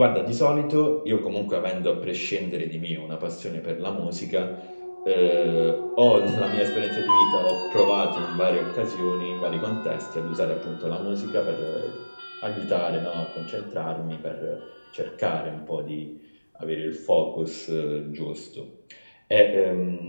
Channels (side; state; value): both; inverted; correlation -1.00